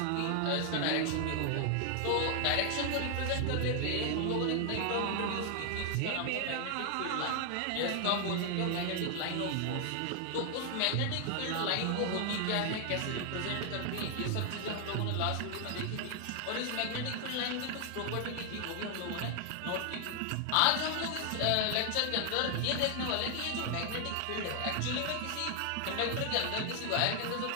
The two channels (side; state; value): both; different; correlation 0.00